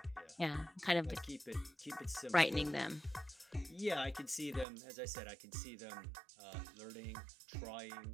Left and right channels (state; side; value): drops out; left; at 4.7 s